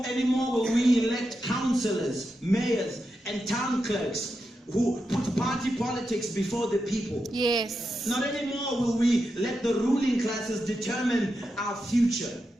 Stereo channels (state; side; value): normal; both; correlation 0.87